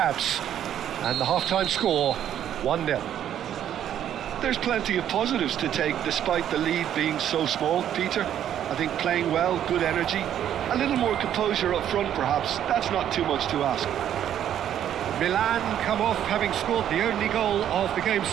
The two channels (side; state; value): left; quieter; 10.4 dB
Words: And the half-time score, 1-0. There's plenty of positives to take despite the lead being so small, Peter. I think playing well, good energy, a little more composure up front perhaps. That's not too much to ask. Milan come off having scored the only goal of the game